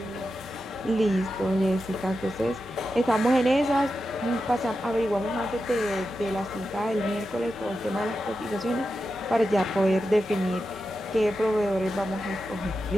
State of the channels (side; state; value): both; normal; correlation 0.90